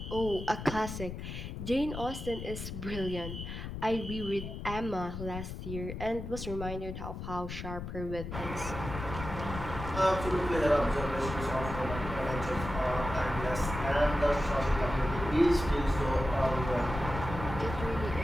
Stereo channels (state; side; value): noise; left; rumble, 7 dB below the sound